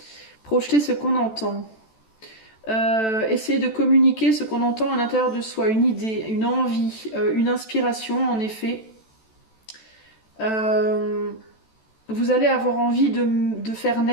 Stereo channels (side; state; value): right; late; 14 ms